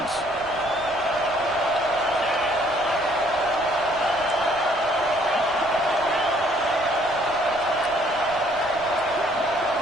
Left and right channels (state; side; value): noise; right; rumble, 20 dB below the sound